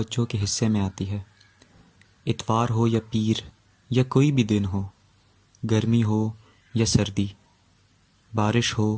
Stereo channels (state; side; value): identical; both; correlation 1.00